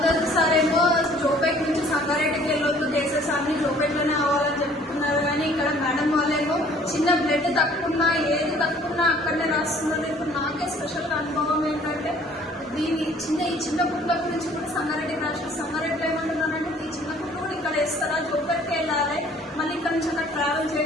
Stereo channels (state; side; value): normal; both; correlation 0.55